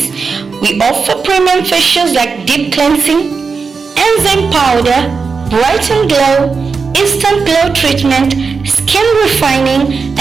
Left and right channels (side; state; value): left; quieter; 5.0 dB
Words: We offer premium facials like deep cleansing, enzyme powder, brighten glow, instant glow treatment, skin refining,